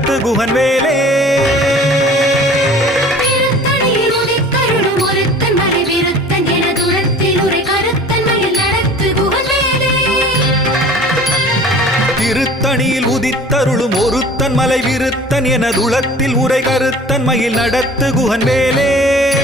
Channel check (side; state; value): both; normal; correlation 0.45